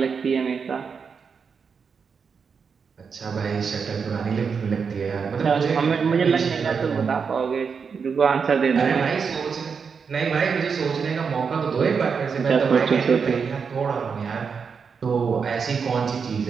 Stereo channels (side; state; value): left; quieter; 5.9 dB